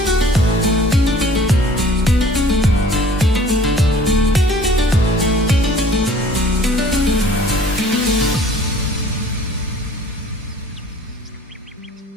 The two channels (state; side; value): normal; both; correlation 0.51